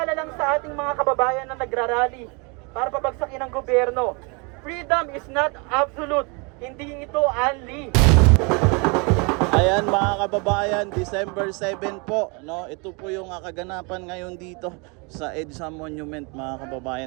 lang sa ating mga kababayan na nagrarally para pabagsakin ang gobyerno. Freedom is not absolute. Hindi ito unli. Ayan mga kababayan, December 7 po, no? Ito po yung kaganapan ngayon dito sa EDSA Monument mga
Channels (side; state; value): left; quieter; 31.4 dB